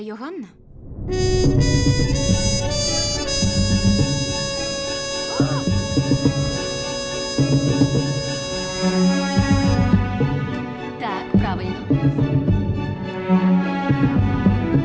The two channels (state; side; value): identical; both; correlation 1.00